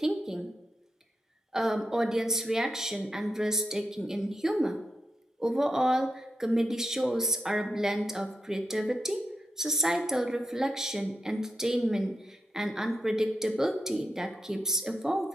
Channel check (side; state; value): both; normal; correlation 0.86